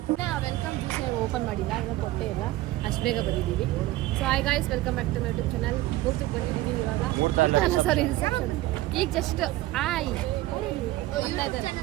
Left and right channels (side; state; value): left; quieter; 17.0 dB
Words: ವೆಲ್ಕಮ್ ಜ್ಯೂಸ್ ಓಪನ್ ಮಾಡಿಲ್ಲ, ಇವಾಗ ಕೊಟ್ಟೆ ಇಲ್ಲ, ಅಷ್ಟು ಬೇಗ ಬಂದಿದ್ದೀವಿ. So hi guys, welcome back to my YouTube channel. ಮೂರ್ತಕ್ಕೆ ಬಂದಿದ್ದೀವಿ ಇವಾಗ. ಸಾರಿ ರಿಸೆಪ್ಷನ್ ಈಗ ಜಸ್ಟ್